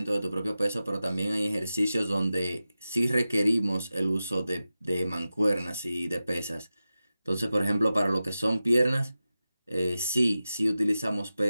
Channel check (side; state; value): both; inverted; correlation -0.93